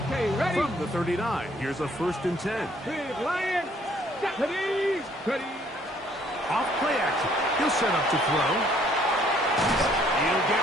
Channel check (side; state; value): both; normal; correlation 0.63